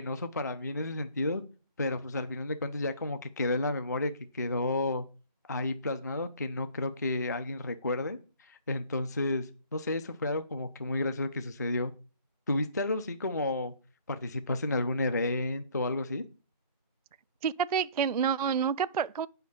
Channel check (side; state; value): both; inverted; correlation -0.53